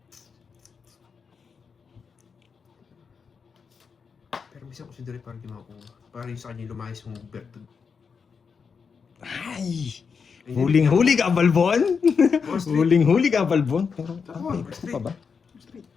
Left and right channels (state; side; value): quieter; right; 5.8 dB